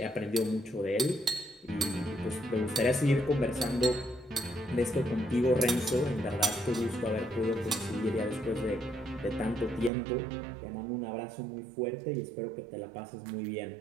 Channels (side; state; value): left; drops out; at 9.9 s